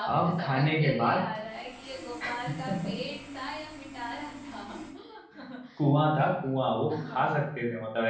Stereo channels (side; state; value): both; identical; correlation 1.00